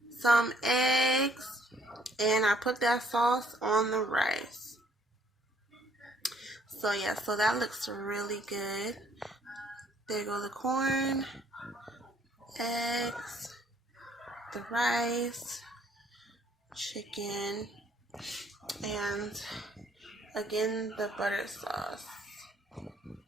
some eggs, and I put that sauce on the rice. So yeah, so that looks really good. There go the corn, eggs, the rice, chicken, and again the butter sauce.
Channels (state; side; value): normal; both; correlation 0.64